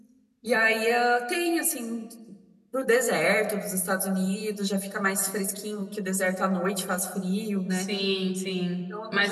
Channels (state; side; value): identical; both; correlation 1.00